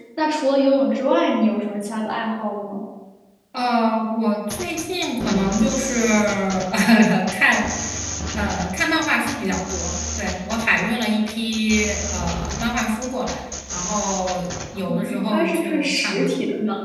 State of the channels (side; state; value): both; identical; correlation 1.00